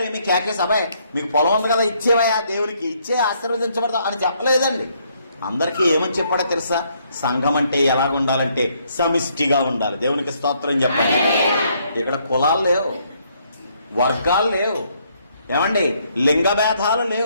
ఏమి కేకేసి, అబ్బాయి మీకు పొలం ఉంది కదా ఇచ్చేవయా, దేవునికి ఇచ్చే ఆశీర్వదించబడతాం అని చెప్పలేదండి. అందరికీ ఏమని చెప్పాడో తెలుసా? సంఘం అంటే ఎలాగుండాలంటే సమిష్టిగా ఉండాలి. దేవునికి స్తోత్రం చెప్పండి. ఇక్కడ కులాలు లేవు, వర్గాలు లేవు, ఏమండి లింగ భేదాలు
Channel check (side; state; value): both; inverted; correlation -0.70